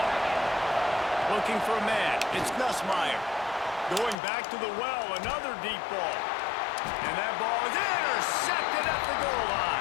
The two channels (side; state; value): right; drops out; at 4.2 s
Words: Looking for a man. It's Nussmeier. Going back to the well. Another deep ball. And that ball is intercepted at the goal